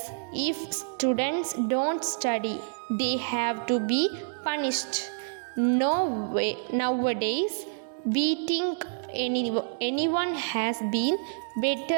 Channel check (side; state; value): left; silent; digital silence